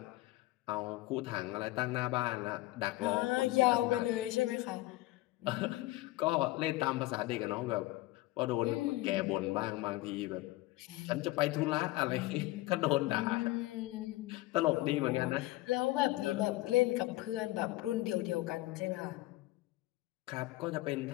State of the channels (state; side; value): quieter; right; 18.7 dB